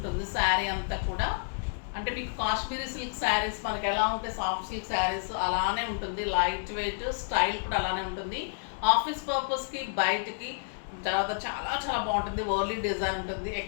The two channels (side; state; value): right; silent; digital silence